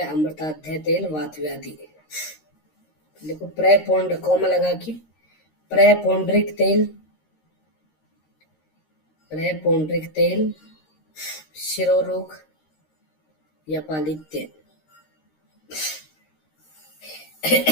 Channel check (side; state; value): right; late; 13 ms